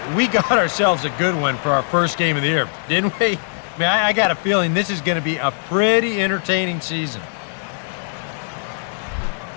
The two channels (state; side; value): silent; right; digital silence